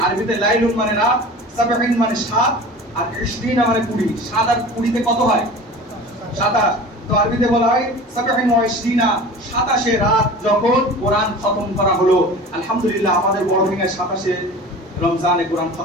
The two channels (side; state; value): both; normal; correlation 0.38